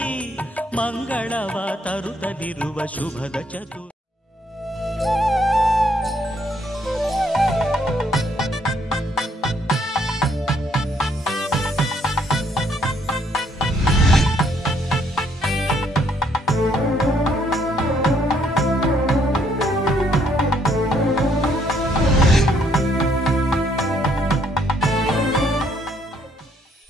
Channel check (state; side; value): normal; both; correlation 0.68